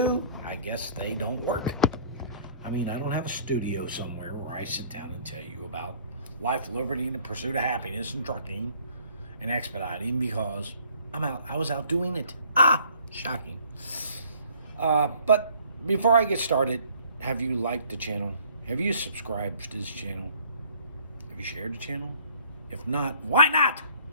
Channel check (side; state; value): both; inverted; correlation -0.56